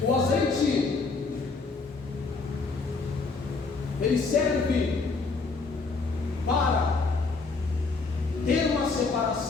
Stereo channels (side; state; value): right; quieter; 4.1 dB